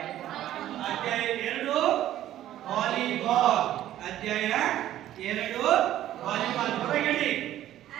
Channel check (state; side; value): quieter; left; 12.8 dB